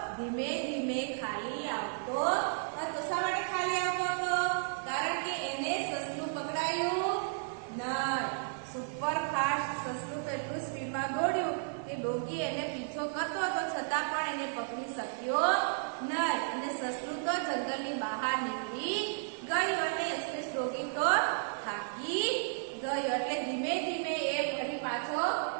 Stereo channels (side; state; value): left; silent; digital silence